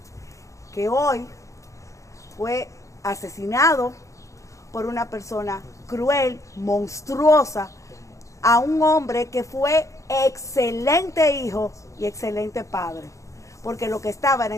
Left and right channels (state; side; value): late; right; 0.15 ms